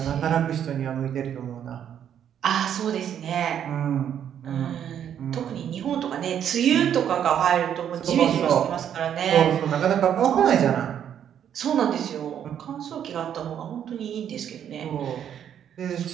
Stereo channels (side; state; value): left; quieter; 9.4 dB